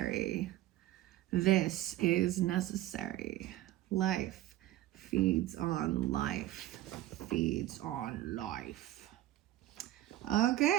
This is necessary. Life feeds on life. Feeds on life.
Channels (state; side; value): quieter; left; 14.5 dB